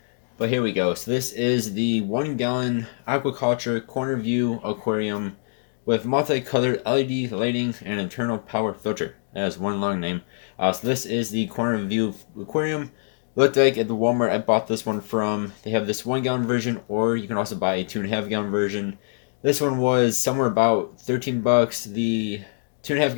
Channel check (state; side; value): silent; right; digital silence